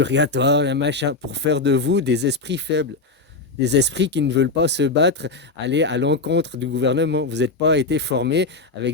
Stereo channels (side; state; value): right; quieter; 3.7 dB